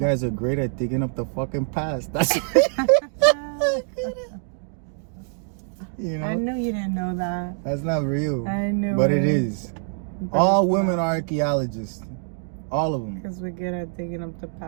are great at digging up the fucking past. That's you know? I knew you didn't know that. That's not real. I knew but it is. But all women are archaeologists. All of them. Because we're good at digging up the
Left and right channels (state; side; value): silent; left; 62 dB below the other